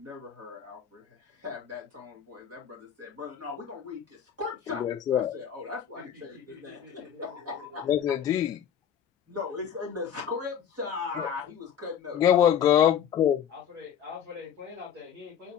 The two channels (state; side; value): quieter; right; 9.0 dB